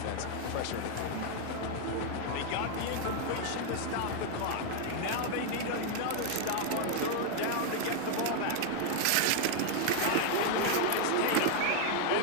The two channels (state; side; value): different; both; correlation 0.00